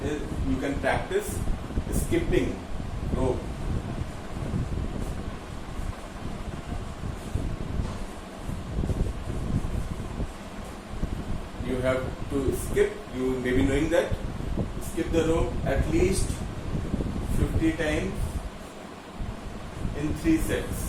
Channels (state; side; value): identical; both; correlation 1.00